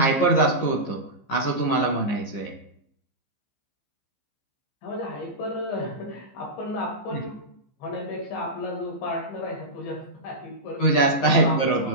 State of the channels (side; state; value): right; late; 15 ms